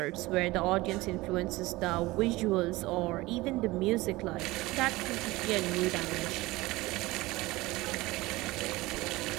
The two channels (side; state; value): left; quieter; 20.2 dB